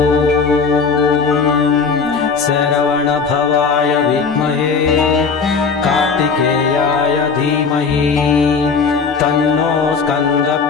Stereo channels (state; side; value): quieter; right; 5.2 dB